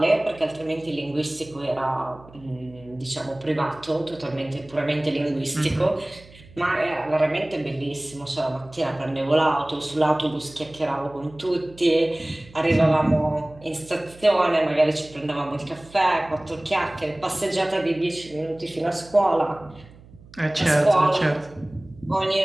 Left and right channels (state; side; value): noise; right; hum, 23 dB below the sound